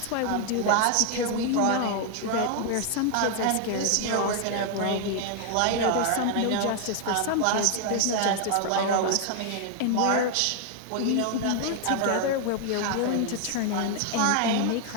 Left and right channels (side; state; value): both; different; correlation 0.00